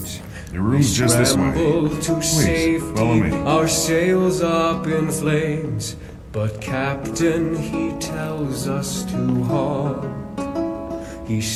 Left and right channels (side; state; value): both; identical; correlation 1.00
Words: Your room's just this way. Please, follow me. Our sails up in flames, but Captain, he tells us to halt. He